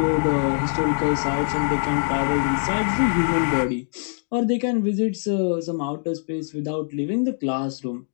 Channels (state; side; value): silent; right; digital silence